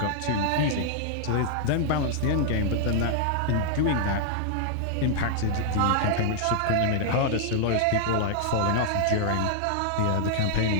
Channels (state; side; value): different; both; correlation -0.01